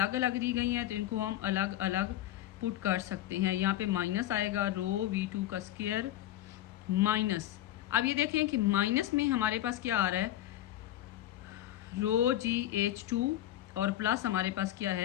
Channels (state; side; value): quieter; right; 13.5 dB